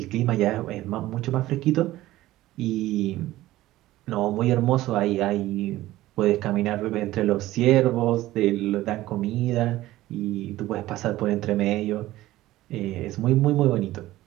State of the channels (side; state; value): left; quieter; 16.1 dB